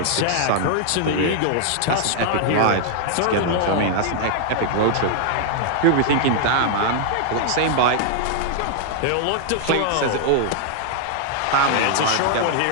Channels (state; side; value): different; both; correlation -0.01